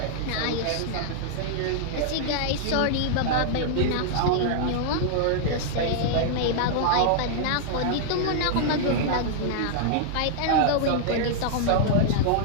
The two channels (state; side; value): different; both; correlation -0.01